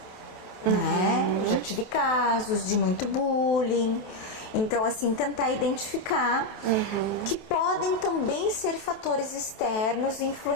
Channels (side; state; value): right; late; 28 ms